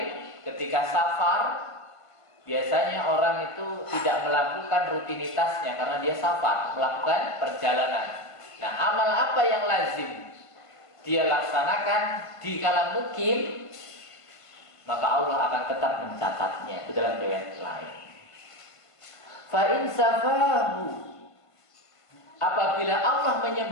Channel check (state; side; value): late; right; 1.5 ms